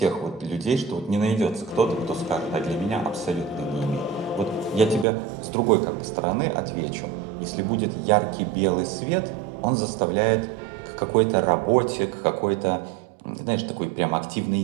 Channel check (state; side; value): drops out; left; at 5.1 s